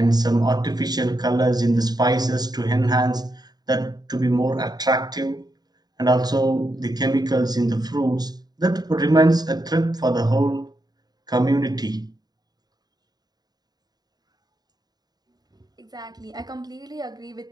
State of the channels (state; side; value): late; left; 0.20 ms